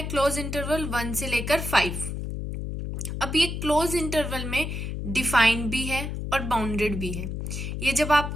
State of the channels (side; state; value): left; noise; hum, 5 dB below the sound